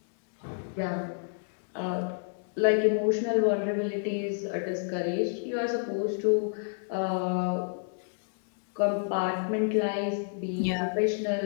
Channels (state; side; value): silent; right; digital silence